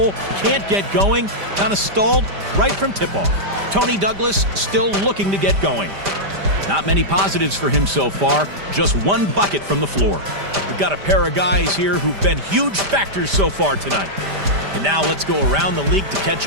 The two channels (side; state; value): left; late; 5.0 ms